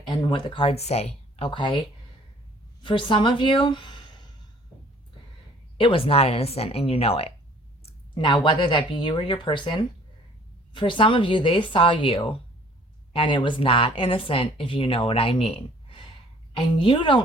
and what the cards say, okay? For some of you, it was not innocent, and you know it. Now, whether that be you or your person, for some of you, they saw you, and it was not innocent, if you know what I mean. And you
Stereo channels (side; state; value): both; normal; correlation 0.55